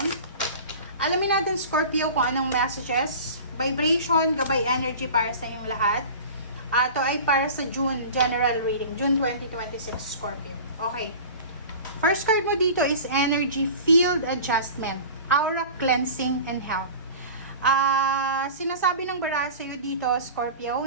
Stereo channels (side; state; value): both; inverted; correlation -0.38